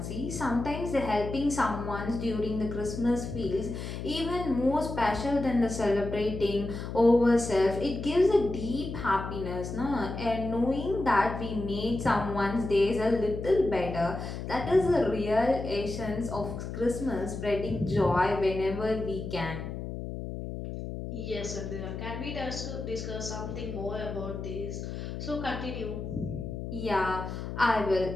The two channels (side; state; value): left; noise; hum, 7 dB below the sound